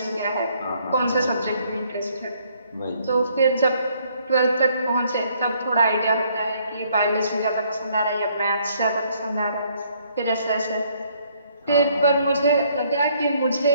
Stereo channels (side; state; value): both; inverted; correlation -0.66